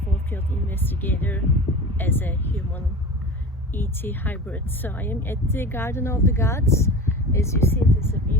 field investigator as a human ET hybrid. So I am at the Garden of the Gods. As you see, it is a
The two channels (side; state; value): both; normal; correlation 0.34